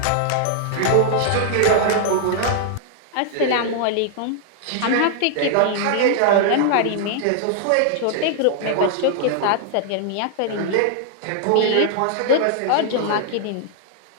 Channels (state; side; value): different; both; correlation -0.01